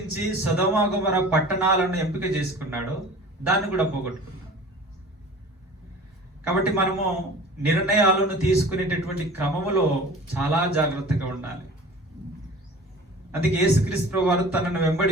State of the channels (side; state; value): both; normal; correlation 0.42